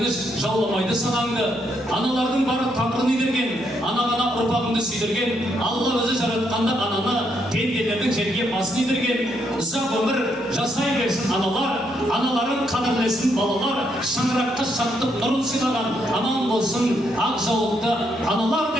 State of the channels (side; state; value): both; normal; correlation 0.76